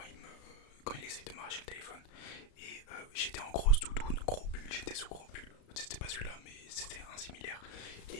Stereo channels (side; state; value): right; late; 34 ms